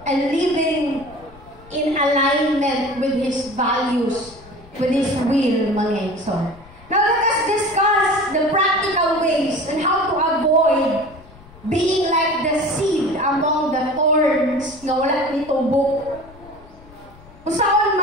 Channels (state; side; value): noise; left; rumble, 23 dB below the sound